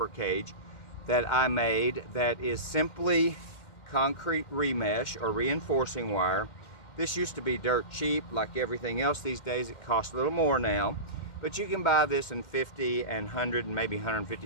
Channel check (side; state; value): right; late; 2.1 ms